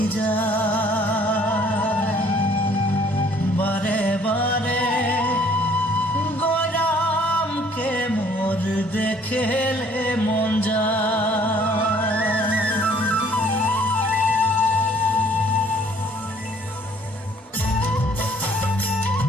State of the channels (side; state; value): both; normal; correlation 0.59